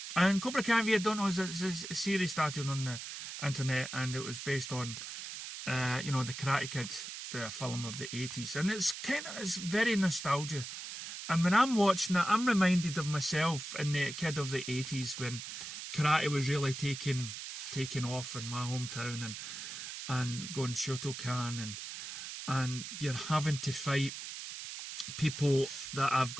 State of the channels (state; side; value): noise; right; hiss, 8 dB below the sound